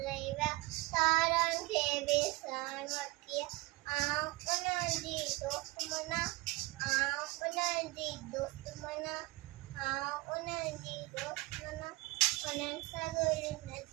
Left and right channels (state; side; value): quieter; left; 22.0 dB